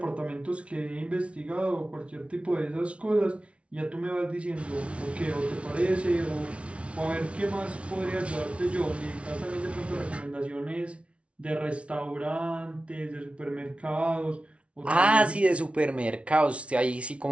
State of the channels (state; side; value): late; left; 0.061 ms